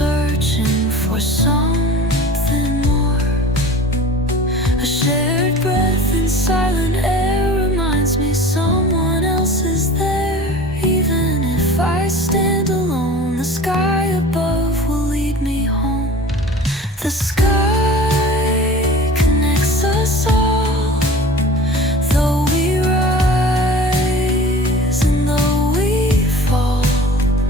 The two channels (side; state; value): both; normal; correlation 0.40